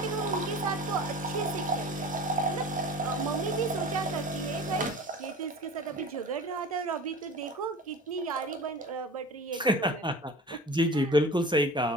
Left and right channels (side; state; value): both; normal; correlation 0.37